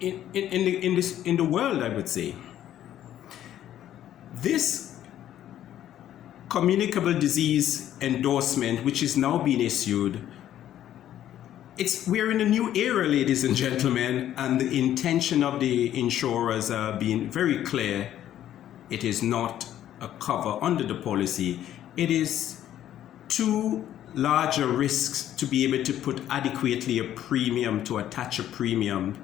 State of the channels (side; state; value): right; quieter; 11.7 dB